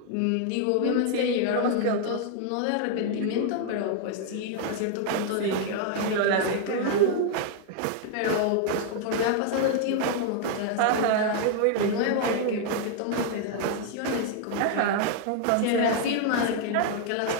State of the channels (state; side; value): different; both; correlation 0.00